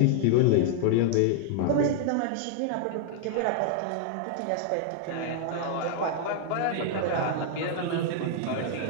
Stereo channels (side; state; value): both; different; correlation -0.01